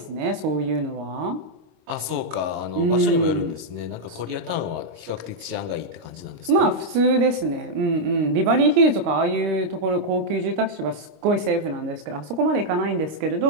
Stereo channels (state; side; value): late; left; 26 ms